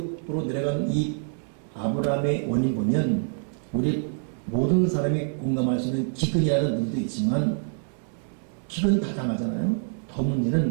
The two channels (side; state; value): left; silent; 61 dB below the other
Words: 내려간 이 아브라함의 원인 보면 우리 모든 사람이 공감할 수 있는 기근이라는 의미도 있지만 기근 다 당하잖아요. 더